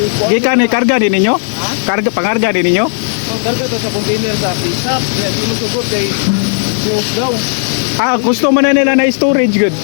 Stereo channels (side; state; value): right; silent; digital silence